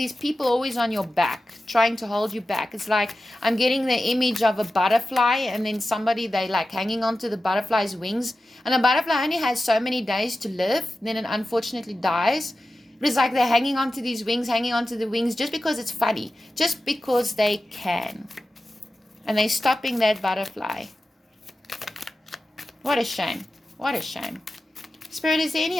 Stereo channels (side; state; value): both; normal; correlation 0.93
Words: people always on your back, trying to hold you back. It's like I'm getting the image of a butterfly and then somebody, they like hanging onto the butterfly's wings. And a butterfly only has so many days to live. Then it unfortunately dies. But it's like they're hanging onto these wings, hanging onto the wings just because it's funny. Just because they can. And they're stopping that butterfly. What a shame. What a shame. Spirit, is there any